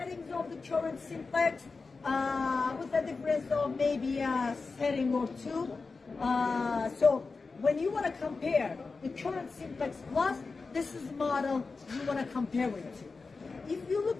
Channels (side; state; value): right; quieter; 4.2 dB